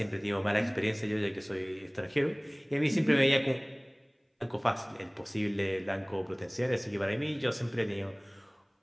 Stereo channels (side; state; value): both; identical; correlation 1.00